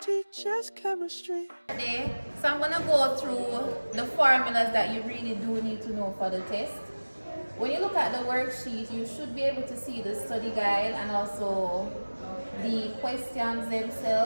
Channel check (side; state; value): both; inverted; correlation -1.00